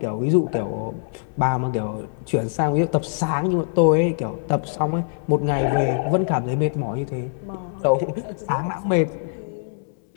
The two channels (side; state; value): right; silent; 63 dB below the other